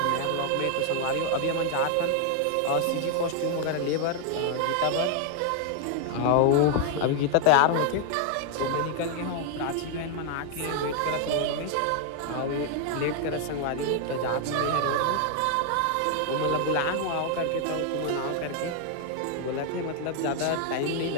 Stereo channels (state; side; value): different; both; correlation 0.00